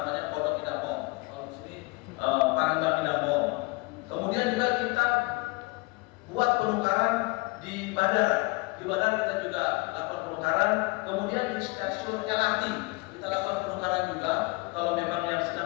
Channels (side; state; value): right; quieter; 26.4 dB